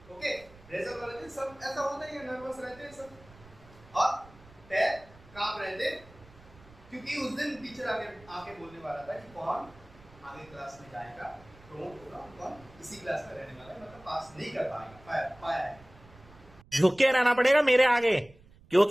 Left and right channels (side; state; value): right; noise; rumble, 23 dB below the sound